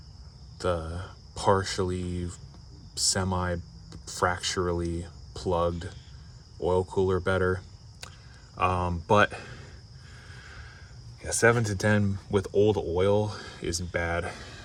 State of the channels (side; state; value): both; identical; correlation 1.00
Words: the partially semi-fracturally plugged oil cooler better. But yeah, 7 to 10 with old oil isn't bad